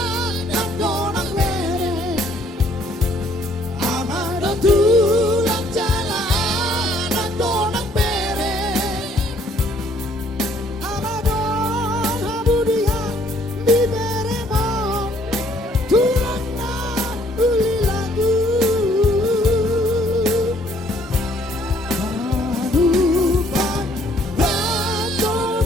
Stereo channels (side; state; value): both; normal; correlation 0.63